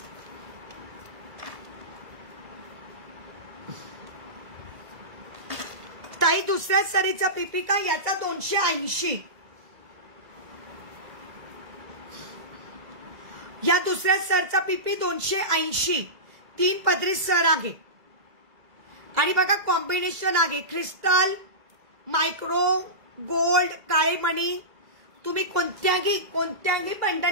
ताई दुसऱ्या सरीचा पीपी का याचा 280. या दुसऱ्या सरचा पीपी 280. 3 पदरी सर आहे. आणि बघा कॉम्बिनेशन आहे क्रिस्टल, मायक्रो, गोल्ड, काळे मणी. तुम्ही कोणत्याही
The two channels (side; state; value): left; late; 2.0 ms